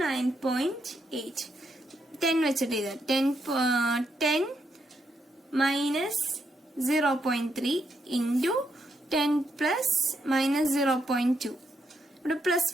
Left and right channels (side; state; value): both; normal; correlation 0.79